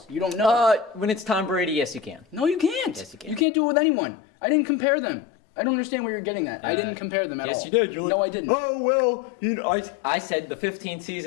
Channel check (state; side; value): drops out; right; at 3.5 s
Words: You don't know. When it's Tom Brady, yes, you can. No, you can't. Yes, you can. You can't do it with anyone. I didn't compare them. I don't understand where you're getting at. I didn't compare them at all. Yes, you did. You're like, no, I didn't. Oh well, I said the 15